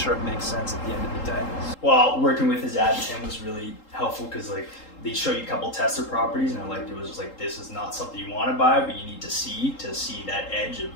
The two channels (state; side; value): late; right; 3.8 ms